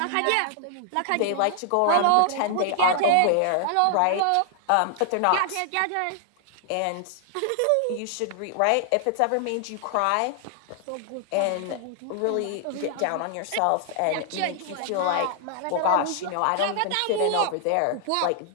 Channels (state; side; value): different; both; correlation 0.00